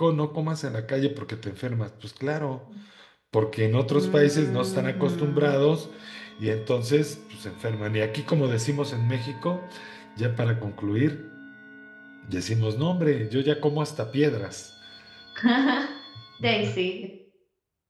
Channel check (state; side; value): identical; both; correlation 1.00